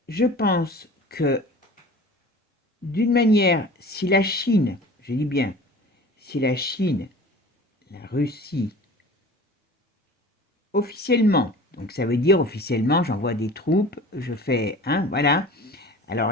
je pense que d'une manière, si la Chine, je dis bien, si la Chine, la Russie, officiellement, donc ça veut dire officiellement, j'envoie des troupes, je fais, hein, voilà.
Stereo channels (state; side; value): normal; both; correlation 0.41